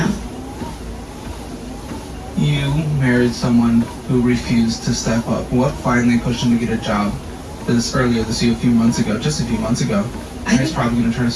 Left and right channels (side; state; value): both; identical; correlation 1.00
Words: You married someone who refused to step up. What finally pushed him to get a job earlier this year, just a few months ago? And he's probably going to try to